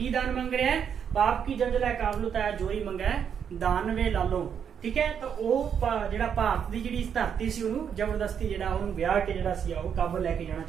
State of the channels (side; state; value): left; quieter; 7.8 dB